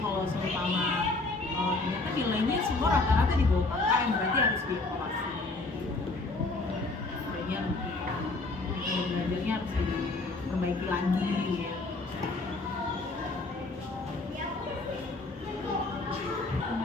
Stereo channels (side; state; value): right; quieter; 3.3 dB